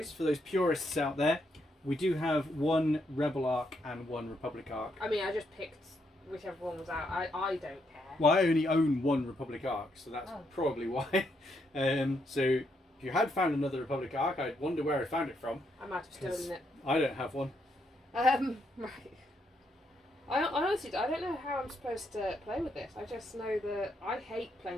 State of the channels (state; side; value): normal; both; correlation 0.77